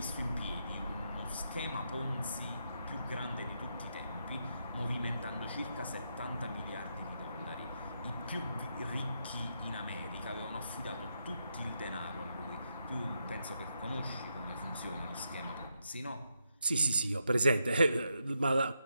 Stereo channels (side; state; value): both; inverted; correlation -0.82